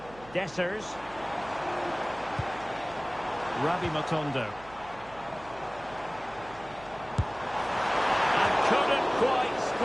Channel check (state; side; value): noise; right; hum, 20 dB below the sound